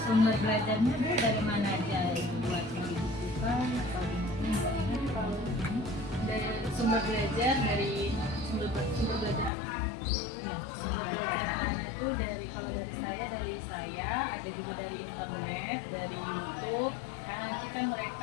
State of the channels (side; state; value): right; drops out; at 9.5 s